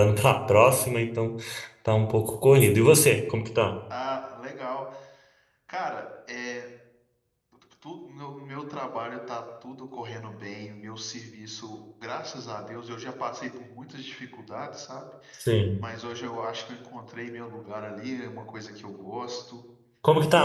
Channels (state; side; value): identical; both; correlation 1.00